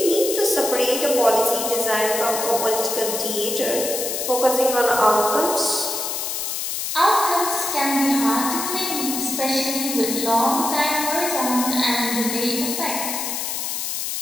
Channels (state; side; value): noise; left; hiss, 3 dB below the sound